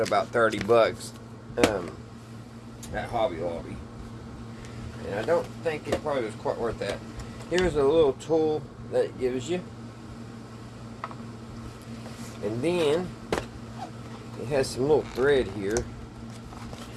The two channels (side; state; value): both; identical; correlation 1.00